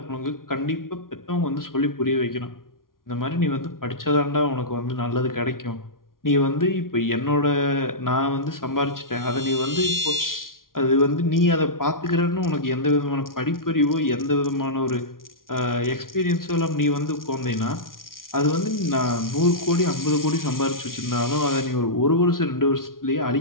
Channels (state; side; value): late; right; 0.91 ms